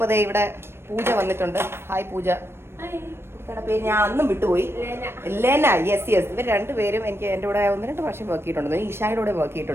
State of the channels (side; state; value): left; late; 0.12 ms